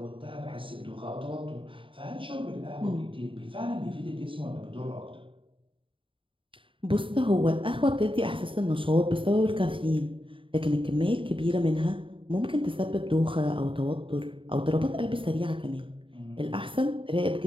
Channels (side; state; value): left; late; 0.25 ms